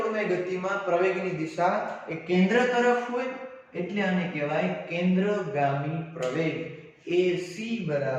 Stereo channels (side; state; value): both; identical; correlation 1.00